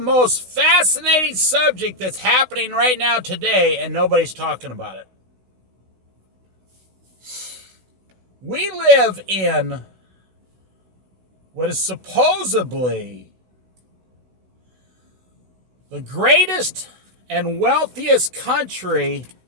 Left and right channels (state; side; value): late; left; 16 ms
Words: fascinating subject that's happening right now today, and nobody's talking about it. We live in what is supposedly the greatest and wealthiest country